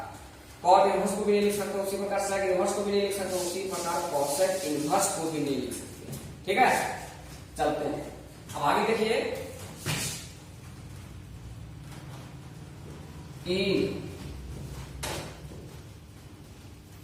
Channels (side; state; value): both; identical; correlation 1.00